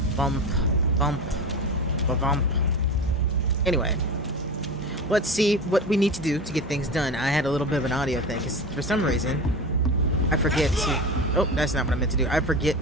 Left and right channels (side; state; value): both; normal; correlation 0.27